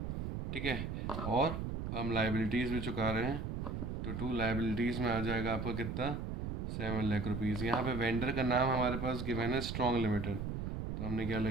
ठीक है। और हम लाइबिलिटीज़ भी चुका रहे हैं, तो टू लाइबिलिटीज़ में आ जाएगा आपका कितना, 7 लाख रुपीज़। यहाँ पे वेंडर का नाम हमारे पास गिवन है स्ट्रॉन्ग लिमिटेड, तो हमने क्या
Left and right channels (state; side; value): noise; right; rumble, 3 dB below the sound